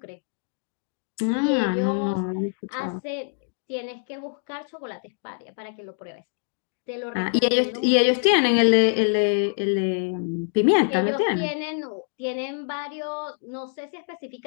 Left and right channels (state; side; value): silent; right; digital silence